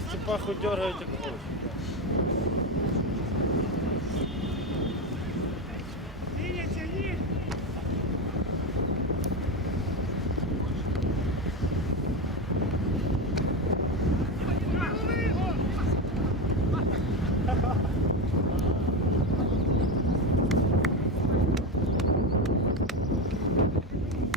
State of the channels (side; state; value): both; normal; correlation 0.16